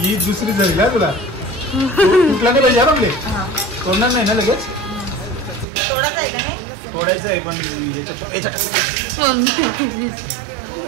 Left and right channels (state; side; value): drops out; left; at 5.7 s